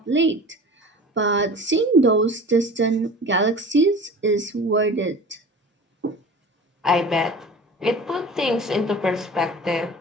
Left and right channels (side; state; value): both; normal; correlation 0.39